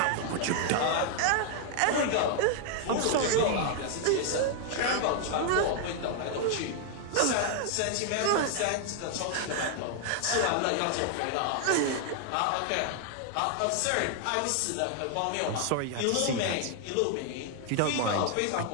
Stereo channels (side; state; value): both; different; correlation 0.00